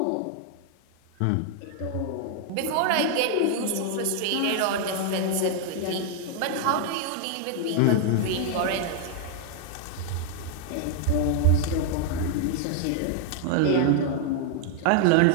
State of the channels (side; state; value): both; different; correlation 0.00